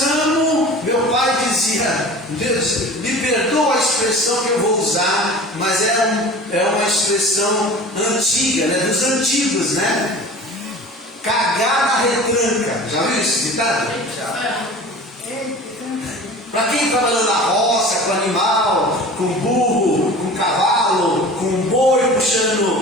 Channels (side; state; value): both; normal; correlation 0.39